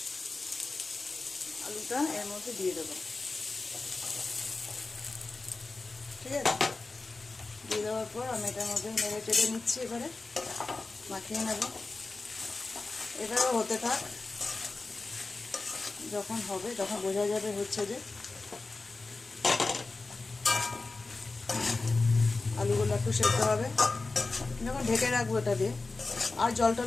আলুটা এর মধ্যে দিয়ে দেবো। ঠিক আছে, দিয়ে দেওয়ার পর আমি এটার মধ্যে নেড়ে চেড়ে নিচ্ছি। এবারে মাখিয়ে নেব। এবারে হতে থাক, যখন হবে তখন বোঝা যাবে হচ্ছে যে আলুগুলো একটু সেদ্ধ হবে। যখন ঢেকে রাখবো এটা দিয়ে, আর জল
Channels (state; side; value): quieter; right; 3.6 dB